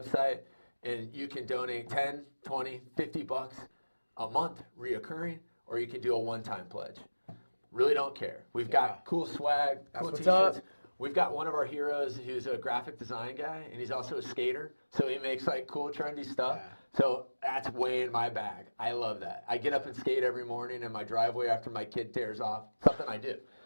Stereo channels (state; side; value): inverted; both; correlation -1.00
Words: and you can donate 10, 20, 50 bucks a month reoccurring, or you can do a one-time pledge. Really don't care. We've got cool swag, cool t-shirts. We've got one of our heroes who's a graphic design guy, and he's also a skater, so he makes like cool, trendy stuff. So that's way in my bag. I love that. I get up and skate every morning in my driveway after my kid tears off. Something I do.